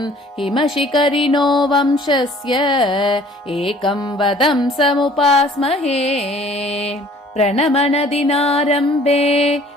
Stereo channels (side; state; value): both; normal; correlation 0.53